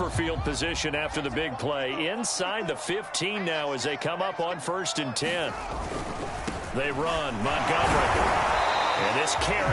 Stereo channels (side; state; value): both; identical; correlation 1.00